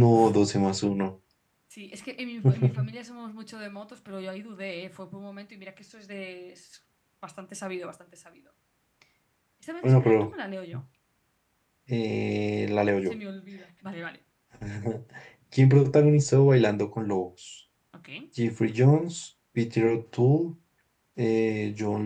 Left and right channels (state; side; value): identical; both; correlation 1.00